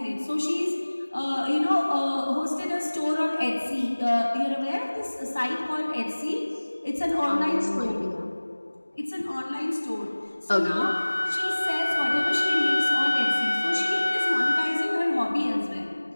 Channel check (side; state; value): both; inverted; correlation -1.00